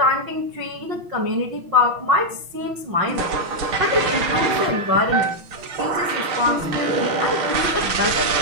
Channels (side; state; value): left; late; 6.1 ms